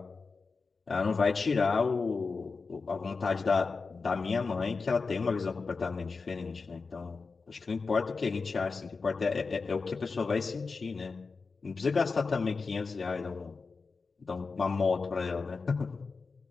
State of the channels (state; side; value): quieter; right; 4.5 dB